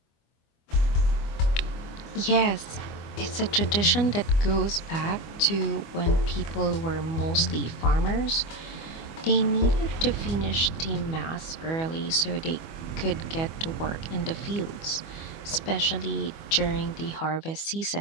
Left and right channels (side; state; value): right; late; 25 ms